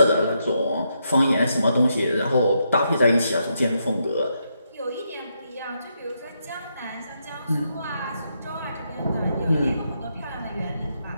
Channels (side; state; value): both; inverted; correlation -0.80